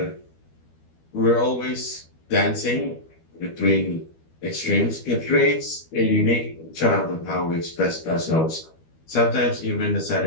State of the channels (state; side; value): late; right; 12 ms